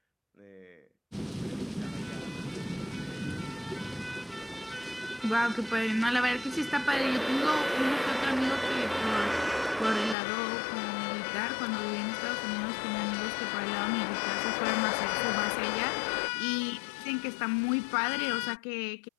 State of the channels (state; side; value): drops out; right; at 10.2 s